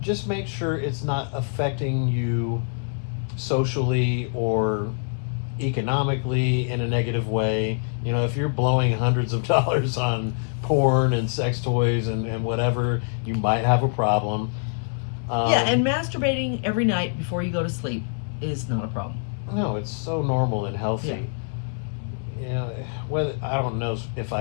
Just make sure it's not affecting you socially or economically in a negative way. If you're blowing hundreds of dollars on porn and sex toys and whatever, you might have a problem. Yeah, and masturbating every night before you go to sleep is not a problem. No, it's so normal and healthy. Yeah. Whether I don't know if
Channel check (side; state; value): right; silent; 62 dB below the other